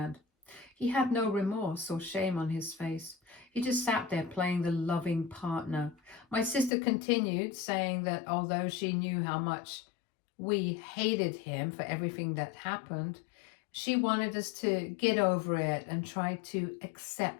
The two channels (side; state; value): right; drops out; at 6.7 s